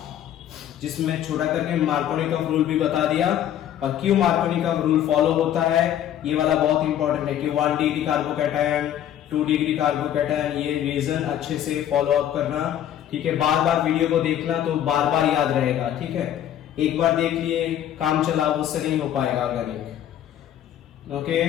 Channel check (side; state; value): right; quieter; 11.0 dB